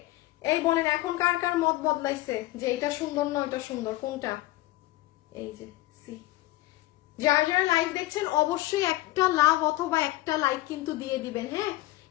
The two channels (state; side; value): quieter; right; 17.7 dB